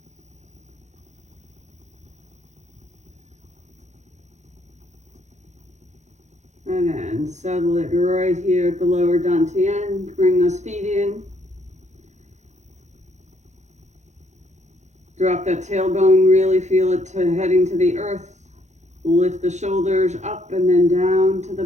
And then settle it right here at the lower dantian. Bring those feet in. Drop that tailbone, really feel it heading to the earth. Lift the shoulders up and then down to the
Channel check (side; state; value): left; late; 0.33 ms